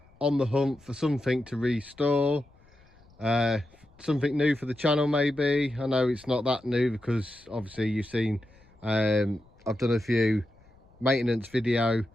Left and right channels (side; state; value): left; noise; rumble, 28 dB below the sound